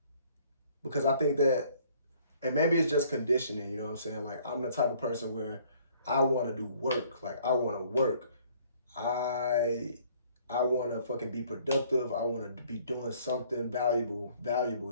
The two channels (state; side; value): inverted; both; correlation -0.59